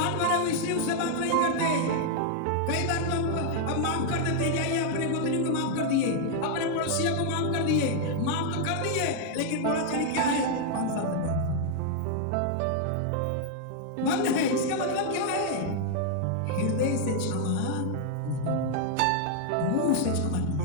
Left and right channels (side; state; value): both; different; correlation 0.00